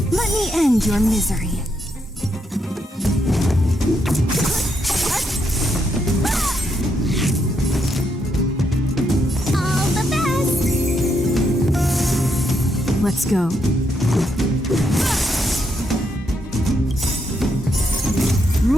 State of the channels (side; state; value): both; normal; correlation 0.78